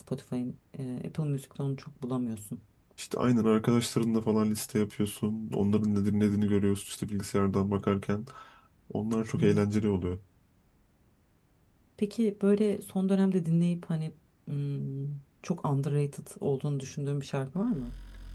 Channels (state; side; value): identical; both; correlation 1.00